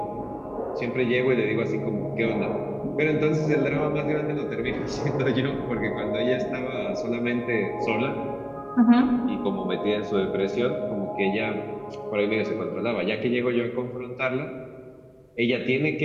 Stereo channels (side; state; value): both; identical; correlation 1.00